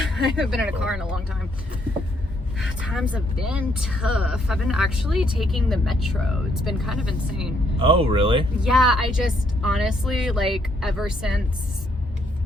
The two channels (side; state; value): both; normal; correlation 0.71